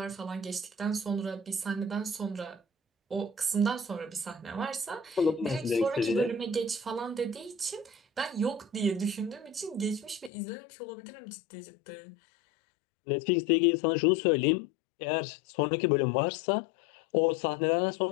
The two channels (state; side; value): drops out; right; at 10.3 s